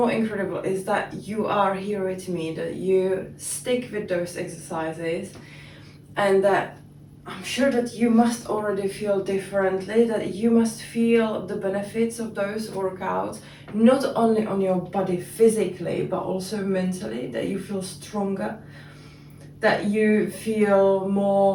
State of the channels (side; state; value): both; identical; correlation 1.00